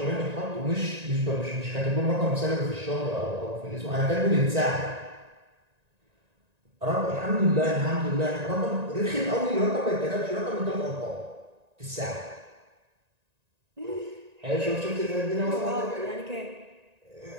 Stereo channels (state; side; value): late; left; 1.9 ms